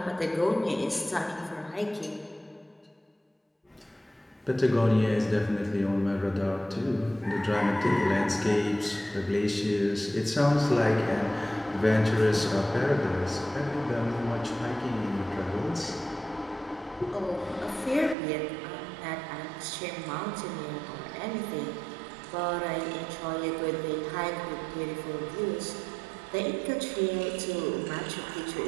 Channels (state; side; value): drops out; left; at 18.2 s